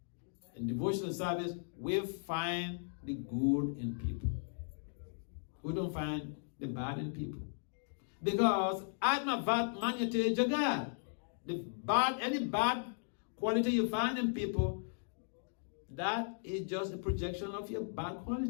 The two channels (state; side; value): silent; right; digital silence